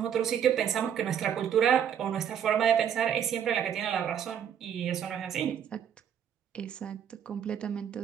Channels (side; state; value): left; quieter; 8.8 dB